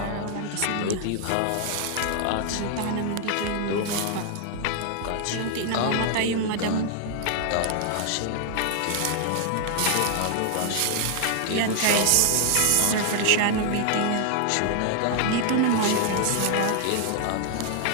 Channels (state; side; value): different; both; correlation 0.00